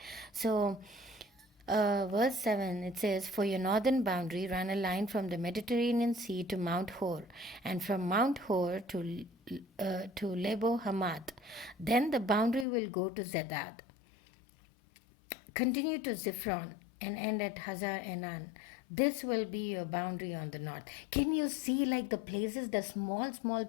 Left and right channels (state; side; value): drops out; right; at 12.7 s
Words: So, verse 7 it says, "For your northern boundary, run a line from the Mediterranean Sea to Mount Hor, and from Mount Hor to Lebo Hamath. Then the boundary will go to Zedad, continue to Ziphron, and end at Hazar Addar. This will be your boundary on the north." Can you see like the places, the small